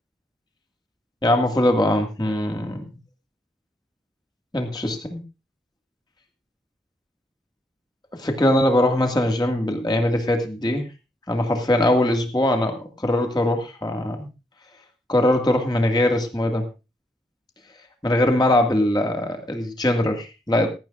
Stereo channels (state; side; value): normal; both; correlation 0.74